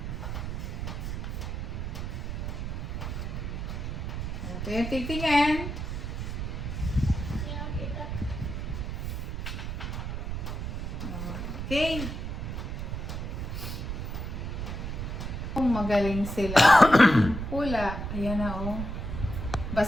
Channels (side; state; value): right; noise; rumble, 4 dB below the sound